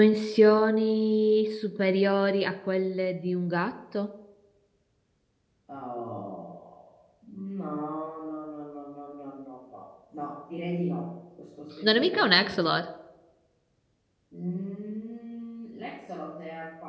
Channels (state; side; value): identical; both; correlation 1.00